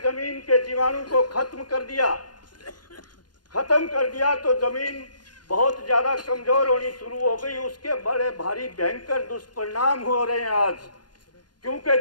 जमीन के जीवाणु को खत्म कर दिया तो जमीन बहुत ज्यादा कमजोर होनी शुरू हो गई। उसके बड़े भारी भयंकर दुष्परिणाम हो रहे हैं आज, क्योंकि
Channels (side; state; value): right; late; 0.70 ms